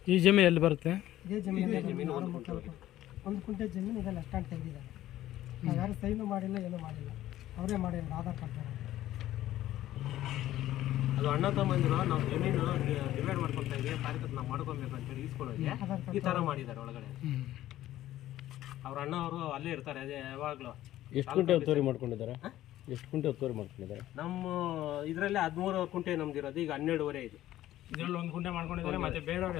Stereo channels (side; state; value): right; quieter; 13.9 dB